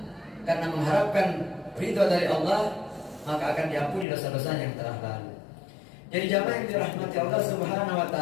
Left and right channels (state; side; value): drops out; right; at 4.0 s